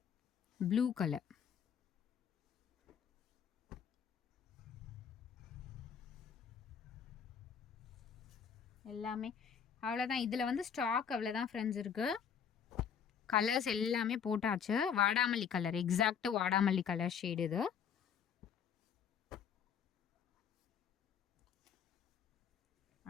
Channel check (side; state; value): right; quieter; 7.6 dB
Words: ப்ளூ கலர். எல்லாமே அவ்வளோதான். இதில் வந்து ஸ்டாக் அவ்வளோதான் ஃப்ரெண்ட்ஸ் இருக்குது. கலர்ஸ் எல்லாமே போட்டாச்சு. வாடாமல்லி கலர், எக்ஸாக்ட் வாடாமல்லி கலர் ஷேடு இது.